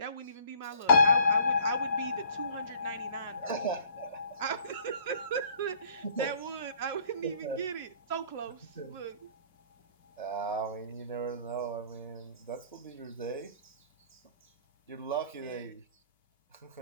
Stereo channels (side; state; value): both; inverted; correlation -0.57